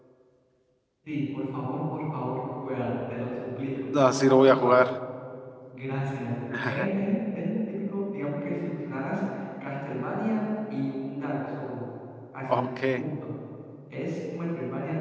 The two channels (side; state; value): both; identical; correlation 1.00